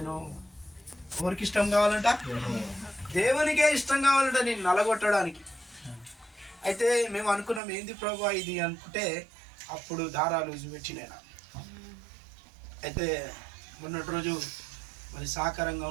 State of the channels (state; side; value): drops out; left; at 7.6 s